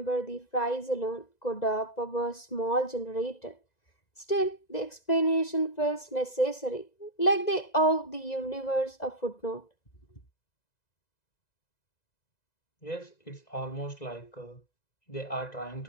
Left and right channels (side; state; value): right; late; 2.0 ms